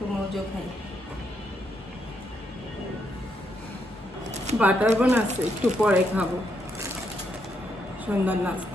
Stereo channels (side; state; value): both; normal; correlation 0.78